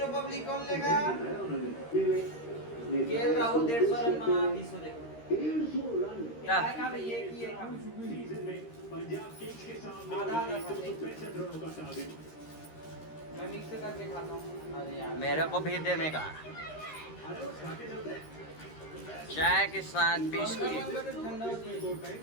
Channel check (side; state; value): right; late; 13 ms